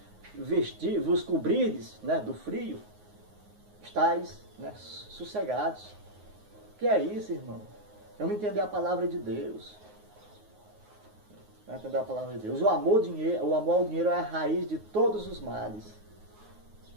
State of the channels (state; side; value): late; left; 9.5 ms